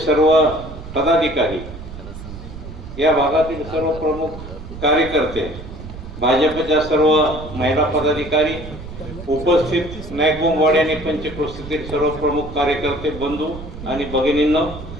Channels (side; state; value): right; noise; rumble, 12 dB below the sound